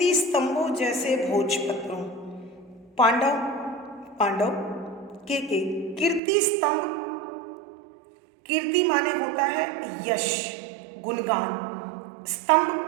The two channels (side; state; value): left; drops out; at 6.2 s